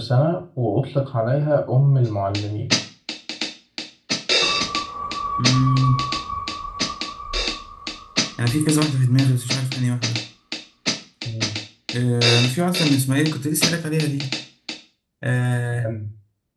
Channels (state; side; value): identical; both; correlation 1.00